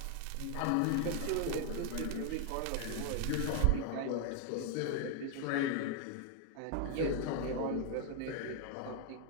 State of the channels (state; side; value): different; both; correlation 0.00